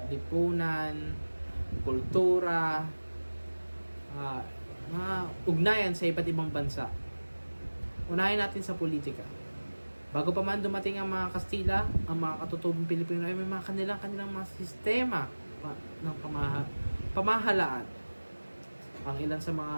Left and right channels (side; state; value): both; inverted; correlation -1.00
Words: lipunan, kultura, mga ugnayan sa iba't ibang bansa. Unahin natin sa politika. Bago pa man dumating ang mga Kastila, ang mga katutubong Pilipino ay may mga kanilang mga sistema ng pamahalaan. Ang ilan sa mga